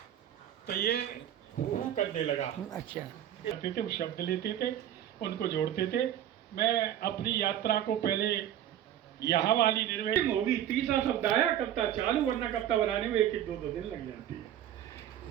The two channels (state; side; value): quieter; left; 11.1 dB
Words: तो ये हू करने लगा। अच्छा, करते थे, शब्द लेते थे, उनको जोड़ते थे। मैं अपनी यात्रा को पहले यहाँ वाली निर्वेद होगी, तीसरा शब्द आया कविता चालू, वरना कविता बनाने में 1-2 दिन लग जाती है।